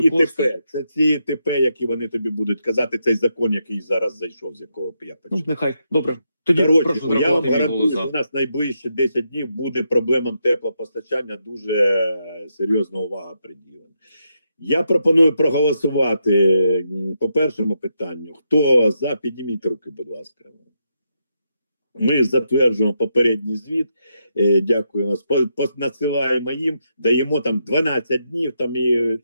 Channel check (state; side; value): inverted; both; correlation -0.82